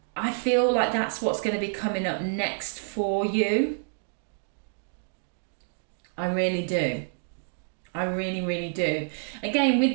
I feel like that's what's going to be coming up next for you. I really do. I really, really do. Again,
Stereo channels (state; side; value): silent; left; digital silence